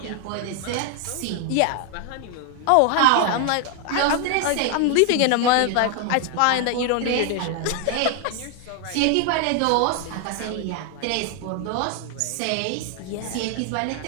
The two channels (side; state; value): both; different; correlation 0.00